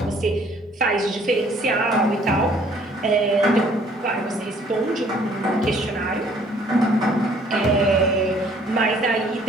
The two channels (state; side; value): normal; both; correlation 0.59